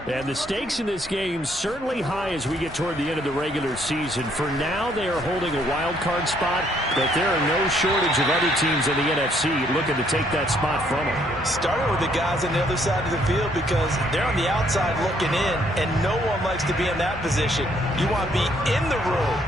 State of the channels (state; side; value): normal; both; correlation 0.68